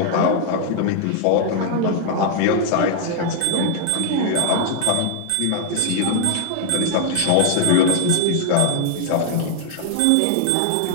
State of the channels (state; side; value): different; both; correlation 0.00